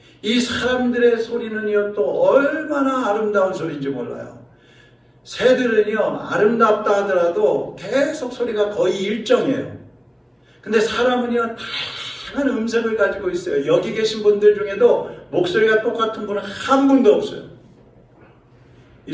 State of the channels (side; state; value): both; identical; correlation 1.00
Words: 이 사람들의 소리는요 또 얼마나 아름다운 소리인지 몰라요. 새들은요 아름답다 하더라도 계속 소리가 거의 일정해요. 근데 사람은요 다양한 음색을 가지고 있어요. 여기 계신 분들 중에도 목소리가 똑같은 분은 한 분도 없어요. 이